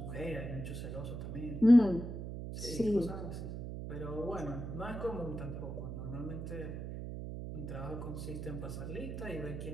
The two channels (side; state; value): right; noise; hum, 6 dB below the sound